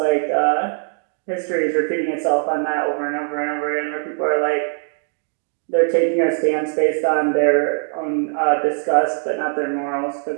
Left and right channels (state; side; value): silent; left; 58 dB below the other